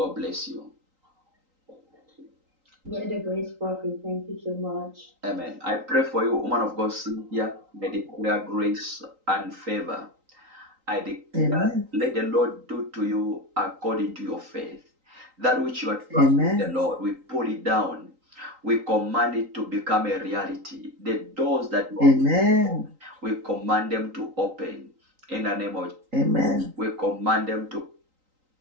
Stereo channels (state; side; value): late; left; 3.8 ms